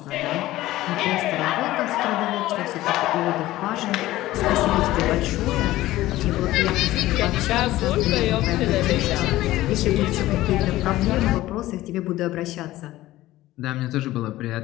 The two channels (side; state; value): right; quieter; 16.2 dB